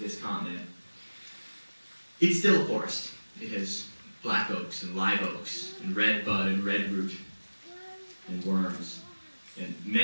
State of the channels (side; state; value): both; inverted; correlation -1.00